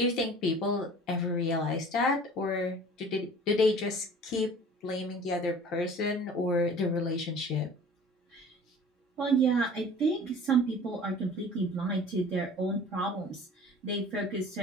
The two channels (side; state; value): both; normal; correlation 0.45